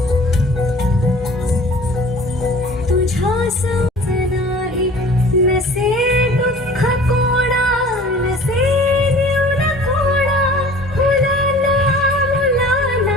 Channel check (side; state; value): both; normal; correlation 0.46